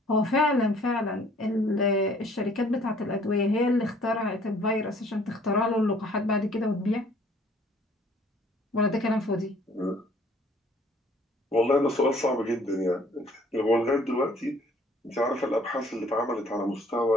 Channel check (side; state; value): both; normal; correlation 0.57